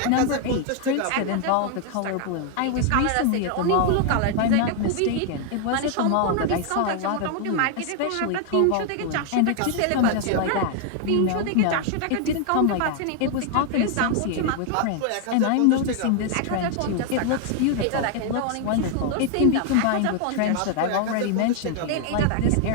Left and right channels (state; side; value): different; both; correlation 0.00